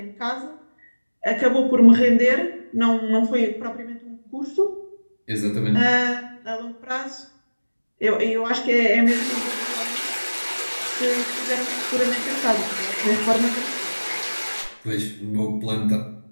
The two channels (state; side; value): inverted; both; correlation -1.00